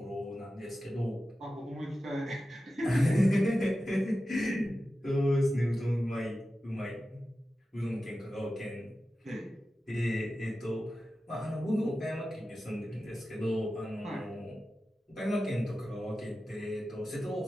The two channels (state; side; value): normal; both; correlation 0.93